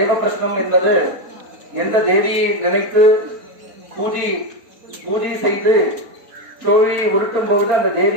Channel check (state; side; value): late; left; 4.3 ms